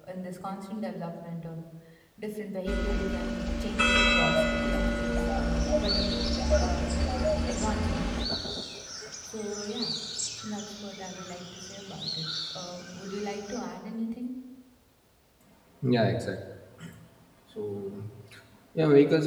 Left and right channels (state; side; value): identical; both; correlation 1.00